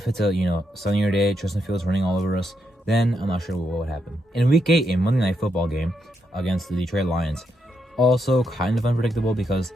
it's a sunnier day, Justin Fields running all over us, then I'm not sure what would happen. In week 8, a Monday Night Football game against the Detroit Lions, also kind of unpredictable because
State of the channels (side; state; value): both; normal; correlation 0.81